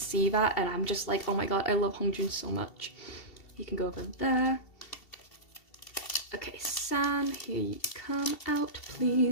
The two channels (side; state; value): right; late; 2.7 ms